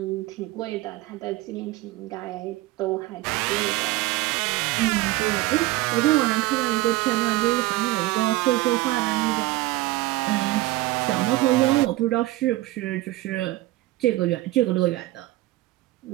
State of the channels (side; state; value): left; quieter; 17.8 dB